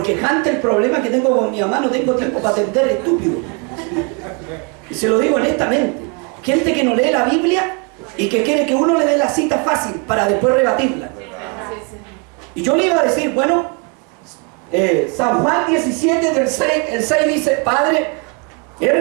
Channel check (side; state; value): left; quieter; 34.4 dB